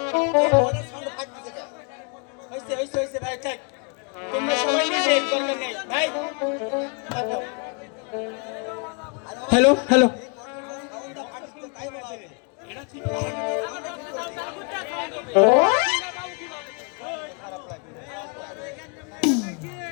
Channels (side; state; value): right; quieter; 35.1 dB